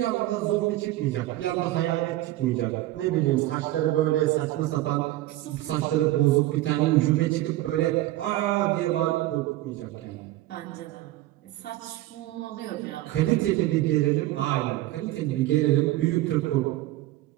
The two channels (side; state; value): left; quieter; 16.1 dB